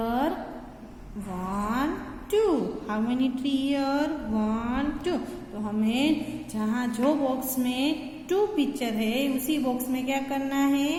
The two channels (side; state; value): both; identical; correlation 1.00